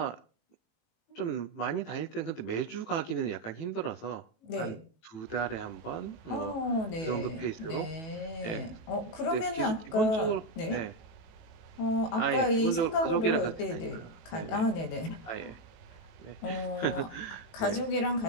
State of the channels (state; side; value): late; right; 18 ms